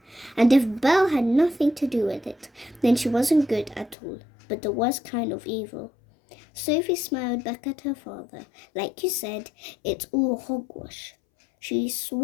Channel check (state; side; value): drops out; right; at 4.0 s